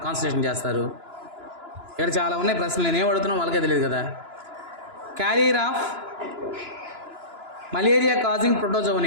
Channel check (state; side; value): late; left; 2.9 ms